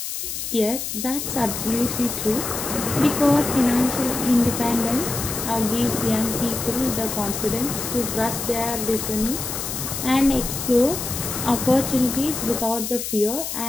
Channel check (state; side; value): noise; left; hiss, 5 dB below the sound